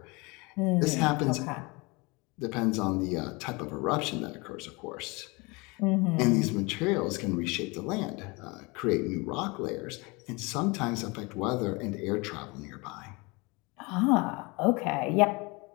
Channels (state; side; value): quieter; right; 26.6 dB